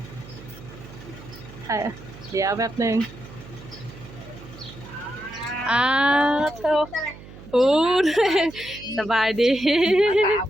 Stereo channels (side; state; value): right; noise; hum, 17 dB below the sound